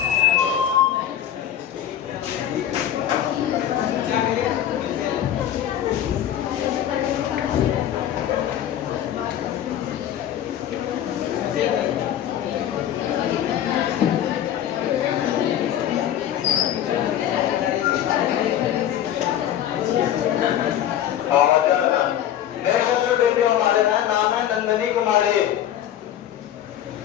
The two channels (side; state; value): right; quieter; 10.9 dB